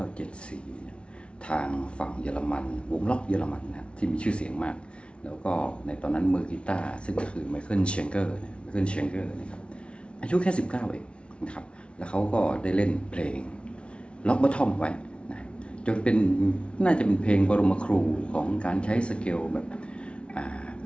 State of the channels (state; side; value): late; right; 0.059 ms